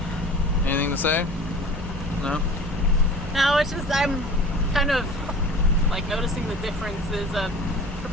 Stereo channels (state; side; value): normal; both; correlation 0.41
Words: Anything to say? No? No, it's just I'm kind of like noticing the differences of